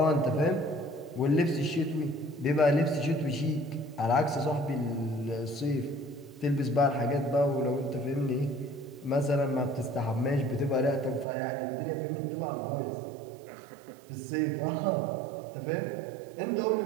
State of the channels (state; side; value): drops out; left; at 11.2 s